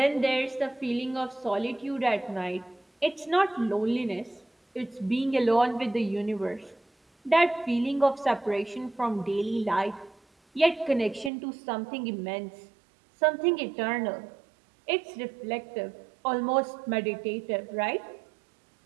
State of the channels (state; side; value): drops out; left; at 11.3 s